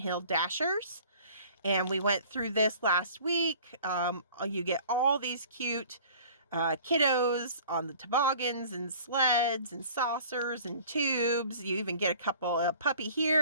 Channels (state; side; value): inverted; both; correlation -0.48